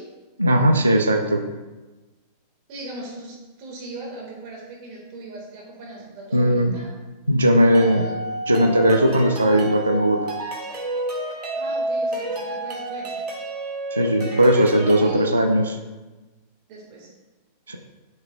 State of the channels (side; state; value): both; inverted; correlation -0.70